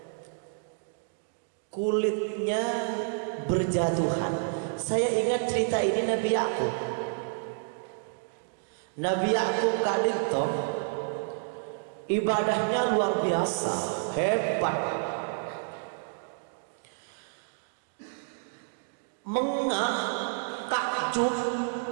kulitnya berjatuhan. Saya ingat cerita ini Nabi Yakub. Nabi Yakub kali itu ibadahnya luar biasa, hebat. Takjub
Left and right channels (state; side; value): silent; left; digital silence